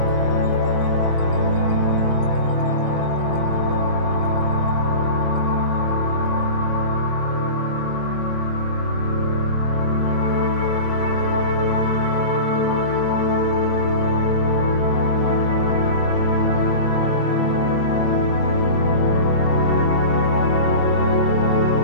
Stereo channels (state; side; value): late; right; 22 ms